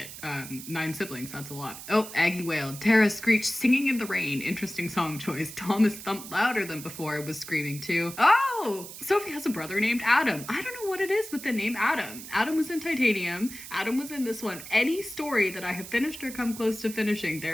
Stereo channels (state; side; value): noise; right; hiss, 12 dB below the sound